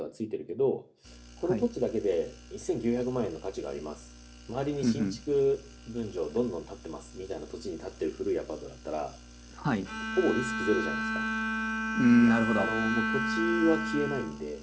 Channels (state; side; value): identical; both; correlation 1.00